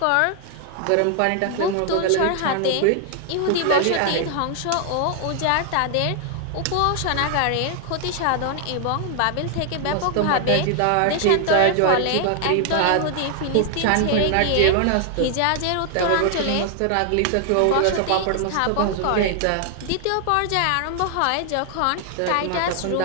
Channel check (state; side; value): different; both; correlation 0.00